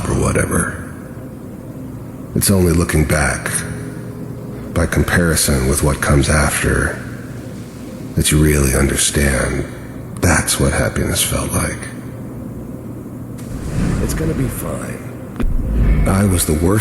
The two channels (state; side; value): identical; both; correlation 1.00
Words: or whatever. It's only looking back, by comparison with what comes after, that you really understand that's what happiness felt like. It's gonna be fine. I was the